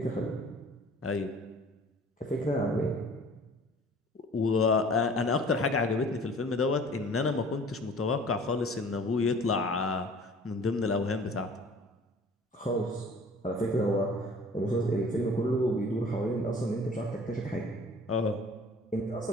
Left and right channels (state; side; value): normal; both; correlation 0.49